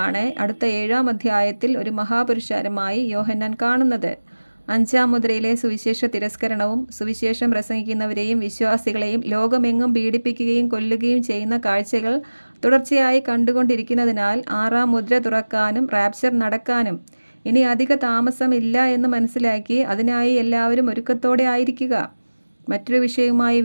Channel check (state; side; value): inverted; both; correlation -1.00